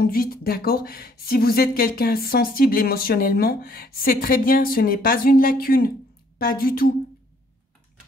d'accord? Si vous êtes quelqu'un sensible émotionnellement, c'est très bien, ce n'est pas une lacune. Pas du tout.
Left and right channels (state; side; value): normal; both; correlation 0.64